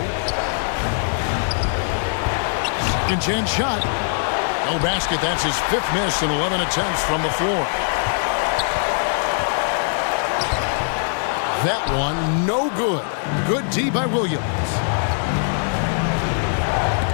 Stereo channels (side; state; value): right; silent; digital silence